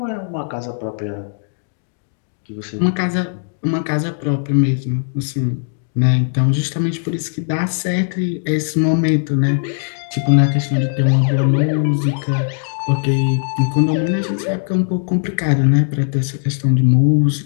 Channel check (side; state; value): right; silent; digital silence